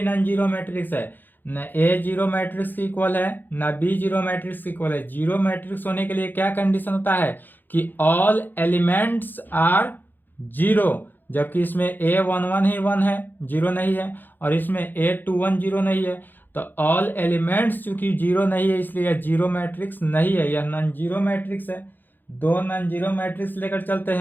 नॉन जीरो मैट्रिक्स है, न ए जीरो मैट्रिक्स की इक्वल है न बी जीरो मैट्रिक्स की इक्वल है। जीरो मैट्रिक्स होने के लिए क्या कंडीशन होता है? कि ऑल एलिमेंट्स आर जीरो, जबकि इसमें ए 1 1 ही 1 है, जीरो नहीं है, और इसमें ए 2 1 जीरो नहीं है। तो ऑल एलिमेंट्स चूंकि जीरो नहीं है इसलिए यह जीरो मैट्रिक्स नहीं है, यह नॉन जीरो मैट्रिक्स है। दो नॉन जीरो मैट्रिक्स लेकर चलते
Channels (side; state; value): right; late; 0.090 ms